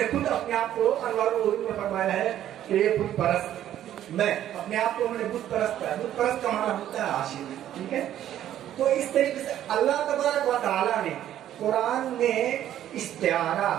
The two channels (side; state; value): left; quieter; 11.7 dB